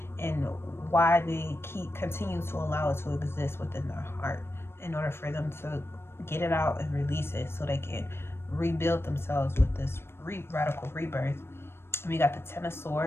and why they continue to allow it to exist within their heart, in order for them to get it out and release it so they can rebuild themselves with this radical rebirth. And we got the Ten of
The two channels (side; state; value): right; late; 0.12 ms